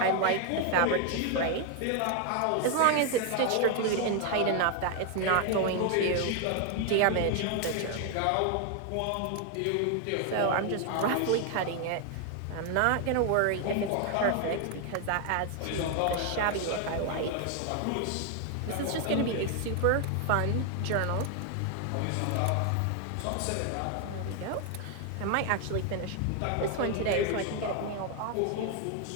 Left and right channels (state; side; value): different; both; correlation 0.01